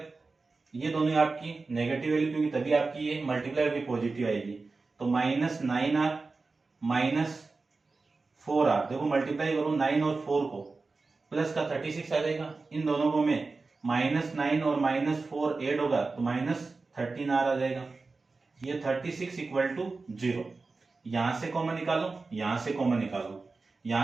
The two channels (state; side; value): quieter; left; 3.9 dB